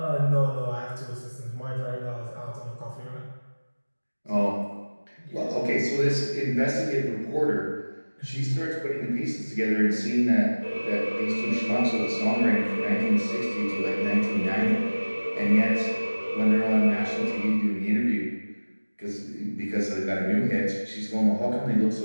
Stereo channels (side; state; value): both; inverted; correlation -1.00